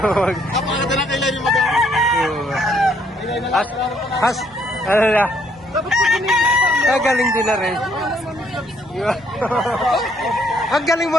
na kailan yung mag-awa. Has, ano na? Galing din na rin. Ang galing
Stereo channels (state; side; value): normal; both; correlation 0.68